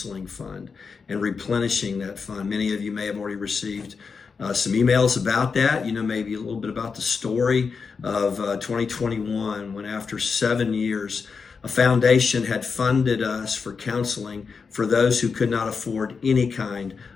Fund and replenishing that fund. Many of you may have already received some emails about that, maybe a little bit about the story of 2021 when after 7 years, a foundation had funded us for counseling for those who could not afford any kind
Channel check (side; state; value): right; quieter; 5.3 dB